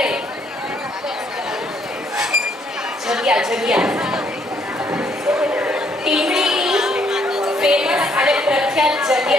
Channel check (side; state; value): both; normal; correlation 0.68